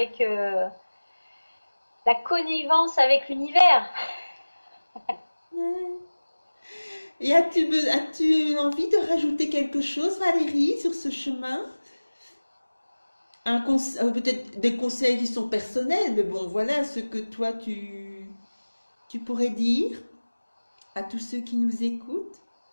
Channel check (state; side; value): inverted; both; correlation -1.00